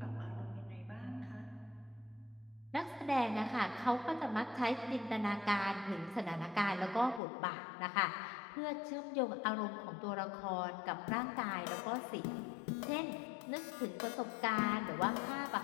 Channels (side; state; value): right; drops out; at 7.2 s